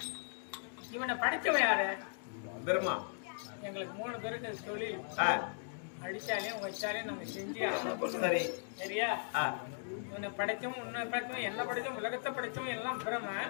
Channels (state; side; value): silent; right; digital silence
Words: இவனை படிச்சவன் யாரு? பெருமா. எங்களுக்கு 3 பேருக்கு தொழில். அடிச்சாலையும் வச்சாலையும் நம்ம செஞ்சு. சரி, சரியா? இவனை படைச்சவன், உன்னை படைச்சவன், என்ன படைச்சவன், உலகத்தை படைச்சவன் எல்லாம் பிரம.